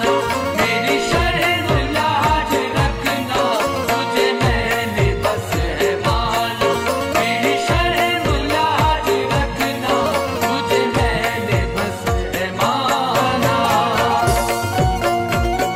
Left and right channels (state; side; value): identical; both; correlation 1.00